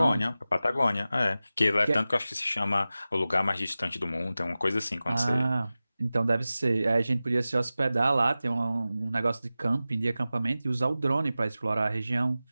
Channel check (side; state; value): both; inverted; correlation -0.96